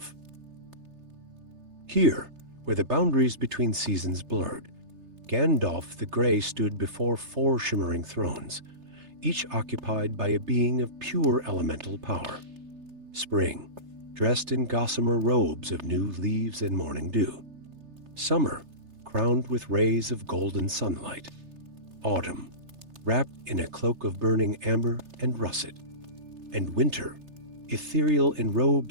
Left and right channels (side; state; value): left; late; 3.3 ms